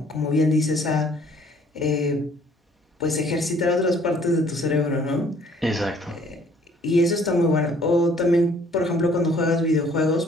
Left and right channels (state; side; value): normal; both; correlation 0.59